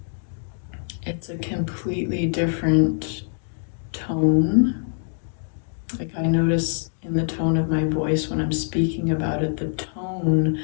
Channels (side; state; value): right; silent; digital silence